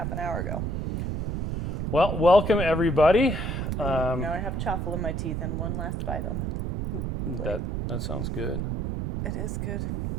an hour ago. Well, welcome everybody. Now I have chaffle in my teeth and one last bite on it. That sounds good. It is good.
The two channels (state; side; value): noise; right; rumble, 2 dB below the sound